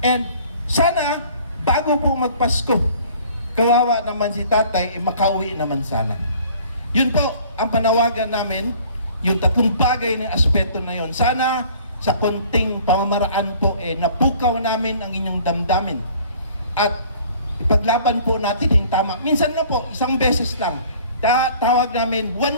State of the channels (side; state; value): both; inverted; correlation -0.52